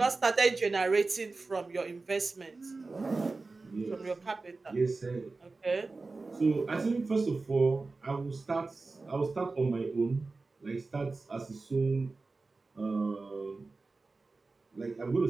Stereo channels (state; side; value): quieter; left; 3.7 dB